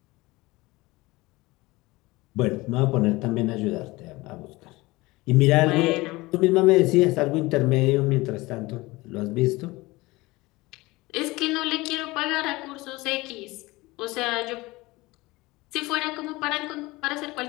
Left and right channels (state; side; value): quieter; right; 21.3 dB